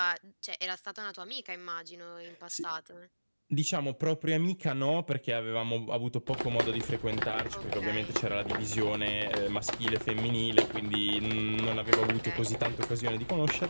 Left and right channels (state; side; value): inverted; both; correlation -1.00